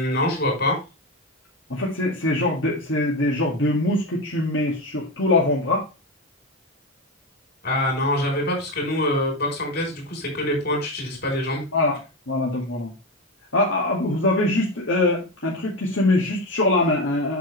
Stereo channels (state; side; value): normal; both; correlation 0.16